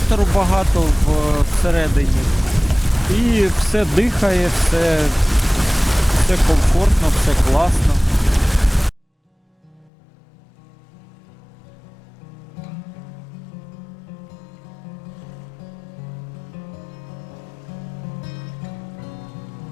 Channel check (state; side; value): drops out; right; at 9.9 s